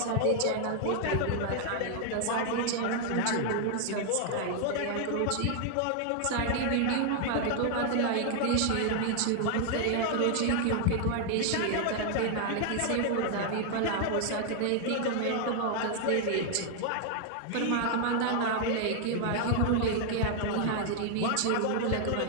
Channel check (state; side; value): different; both; correlation 0.00